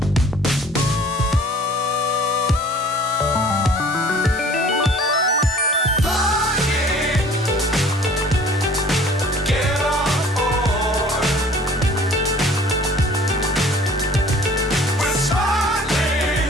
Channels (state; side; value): normal; both; correlation 0.50